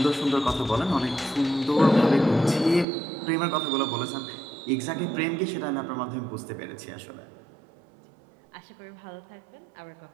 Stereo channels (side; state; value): left; drops out; at 2.9 s